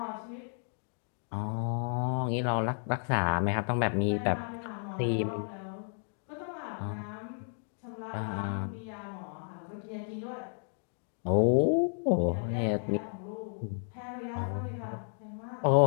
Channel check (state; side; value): silent; right; 56 dB below the other